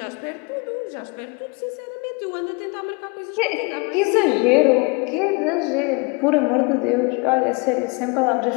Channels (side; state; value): right; quieter; 29.9 dB